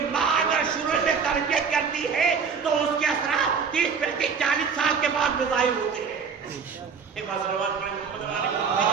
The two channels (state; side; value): quieter; left; 6.0 dB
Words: ماں اگر شروع میں تربیت کرتی ہے تو اس کے اثرات 30 35 40 سال کے بعد میں ظاہر ہوتے ہیں۔ ایک بات سلوات پڑھیں محمد